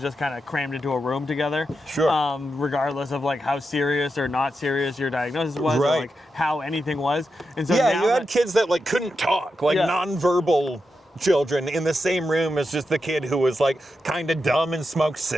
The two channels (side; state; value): both; normal; correlation 0.87